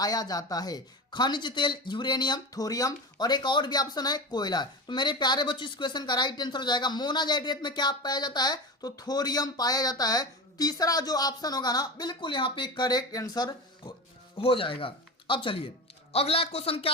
जाता है? खनिज तेल, यूरेनियम, थोरियम और एक और भी ऑप्शन है कोयला। तो मेरे प्यारे बच्चों इस क्वेश्चन का राइट आंसर हो जाएगा मोनाजाइट रेत में क्या पाया जाता है? तो थोरियम पाया जाता है। तीसरा जो ऑप्शन होगा ना बिल्कुल यहाँ पे करेक्ट आंसर हो जाएगा। अब चलिए अगला क्वेश्चन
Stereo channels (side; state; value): both; normal; correlation 0.26